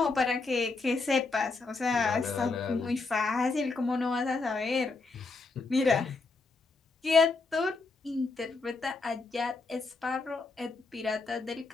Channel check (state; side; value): quieter; right; 3.9 dB